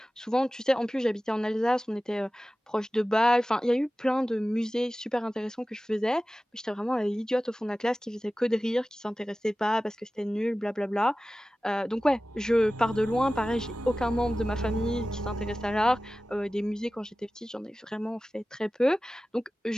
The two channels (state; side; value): normal; both; correlation 0.96